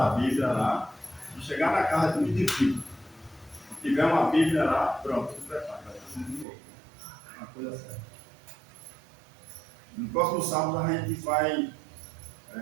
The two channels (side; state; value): left; drops out; at 6.5 s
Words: Bíblia lá, se chegar na casa é muito difícil. Se tiver uma Bíblia lá, pronto, se prepara, vai ser muito bom. Uma coisa séria. No próximo sábado a gente vai